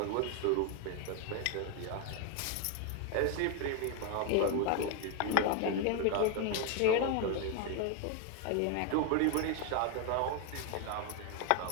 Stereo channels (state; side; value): different; both; correlation 0.01